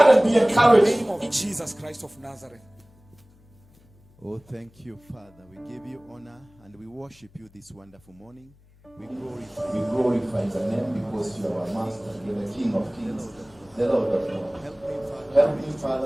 and be encouraged. In Jesus Christ of Nazareth. Oh, thank you, Father. We give you honor and we worship you this wonderful morning. We glorify your name because you are our master. You are the King of Kings, the Lord of Lords. Help me,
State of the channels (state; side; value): noise; left; hum, 29 dB below the sound